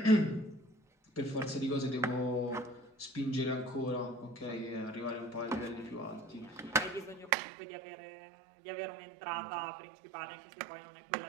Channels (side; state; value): left; drops out; at 7.3 s